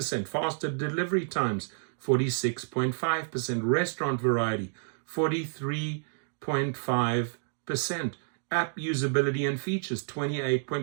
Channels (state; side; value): silent; left; digital silence